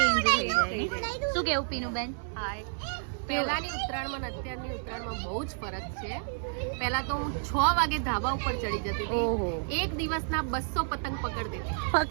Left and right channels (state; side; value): silent; left; digital silence